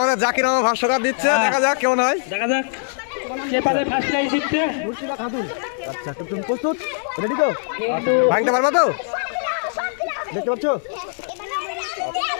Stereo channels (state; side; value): silent; right; digital silence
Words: জাকির আমার ভাষ্যকার দিচ্ছে, দেখা যাক কেমন হয়। দেখা যাক কে পারে ফার্স্ট প্রাইজ জিততে। আচ্ছা তুমি প্রস্তুত? রেডি তো? ভাঙতে পারবা তো? দেখতে পাচ্ছ?